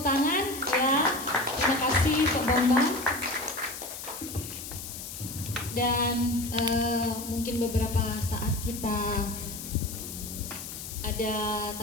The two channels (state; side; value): noise; left; hiss, 9 dB below the sound